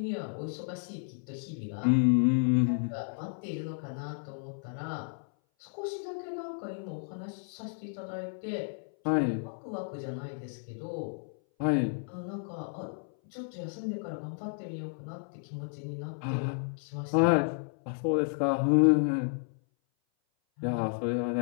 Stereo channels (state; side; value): silent; right; 56 dB below the other